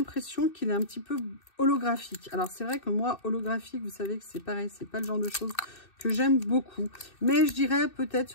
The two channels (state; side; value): late; right; 2.6 ms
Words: qu'il est un petit peu holographique. Alors, c'est vrai que moi, holographique, vous savez que c'est pareil, c'est pas le genre de choses que j'aime beaucoup. Mais je dirais peut-être